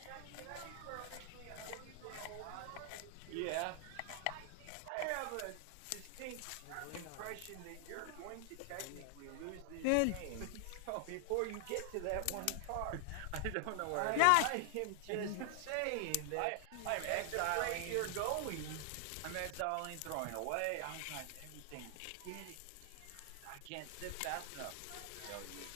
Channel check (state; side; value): different; both; correlation 0.00